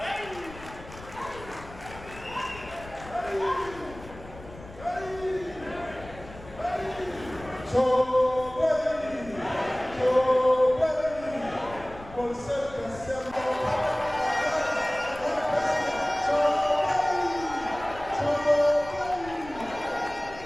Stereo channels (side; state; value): left; noise; rumble, 17 dB below the sound